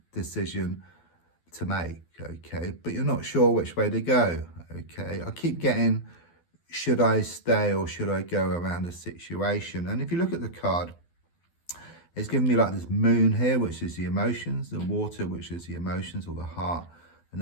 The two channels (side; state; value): right; late; 12 ms